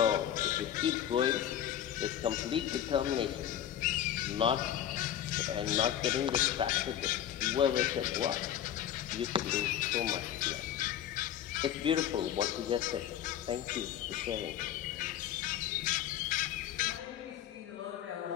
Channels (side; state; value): right; quieter; 10.8 dB